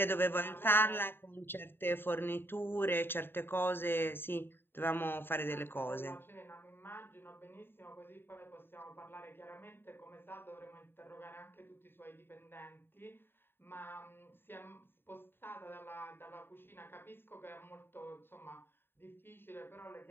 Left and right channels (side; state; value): right; late; 0.10 ms